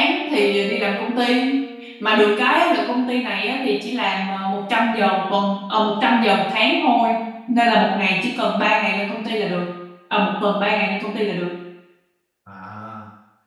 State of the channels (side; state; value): both; identical; correlation 1.00